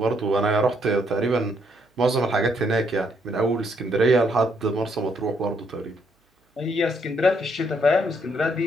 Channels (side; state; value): both; normal; correlation 0.72